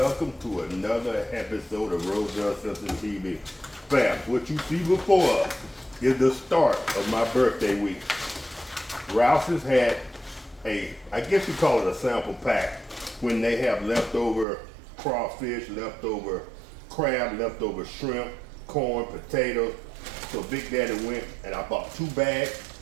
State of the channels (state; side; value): drops out; left; at 14.5 s